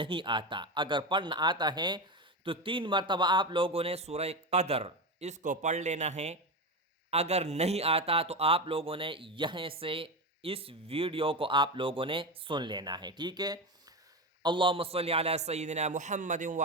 آتا، اگر پڑھنا آتا ہے تو 3 مرتبہ آپ لوگوں نے سورہ قدر اس کو پڑھ لینا ہے۔ اگر نہیں آتا تو آپ لوگوں نے یہاں سے اس ویڈیو کو آپ لوگوں نے سن لینا ہے، ٹھیک ہے؟ اللہم صلی علی سیدنا محمد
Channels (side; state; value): both; normal; correlation 0.18